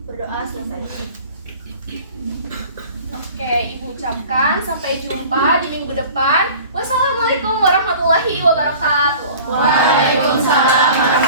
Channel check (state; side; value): inverted; both; correlation -0.43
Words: Berdoa selesai. Oke, Ibu ucapkan sampai jumpa di minggu depan. Wassalamualaikum warahmatullahi wabarakatuh. Waalaikumsalam